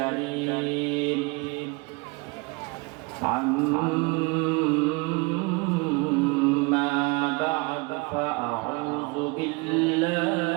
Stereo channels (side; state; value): left; quieter; 27.6 dB